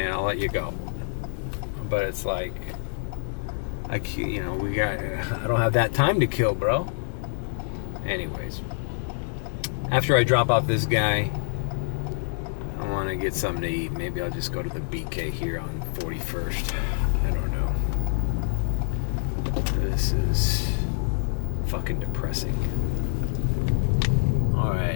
in, I'll let you go. But it's like, I don't have that time to kill, bro. Anyways, after I drop off this guy, I want to get something to eat. Maybe I'll just go to the BK here on 41st. I don't know. This is fucking depressing.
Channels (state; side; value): silent; right; 60 dB below the other